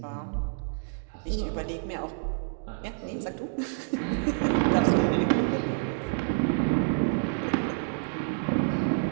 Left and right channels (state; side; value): silent; left; digital silence